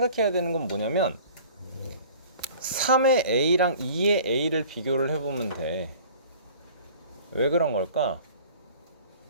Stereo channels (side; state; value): both; inverted; correlation -0.47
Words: 되는 건 뭐냐면 3의 A랑 2의 A를 비교를 해보면 돼. 왜 그런 걸까?